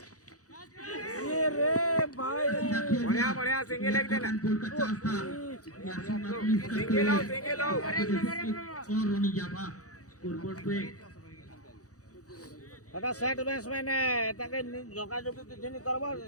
ये रे भाई बढ़िया बढ़िया सिंगल लेग देना गोल का चांस था सिंगल आओ और रोनी जाफा स्कोरबोर्ड पे এটা সেট ব্যাটসম্যান এটাকে যোগাযোগ কিছু নি করব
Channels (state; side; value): late; right; 0.66 ms